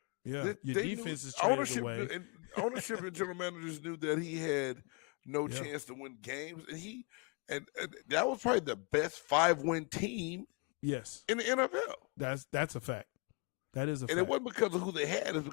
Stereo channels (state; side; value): quieter; right; 33.7 dB